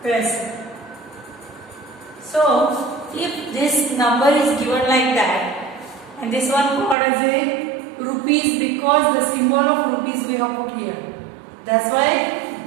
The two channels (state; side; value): drops out; left; at 7.0 s